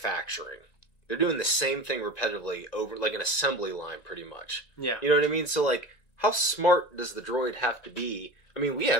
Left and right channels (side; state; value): right; late; 1.9 ms